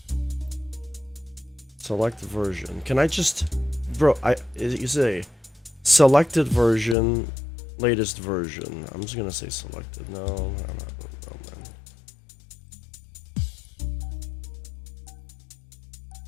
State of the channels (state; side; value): drops out; right; at 7.0 s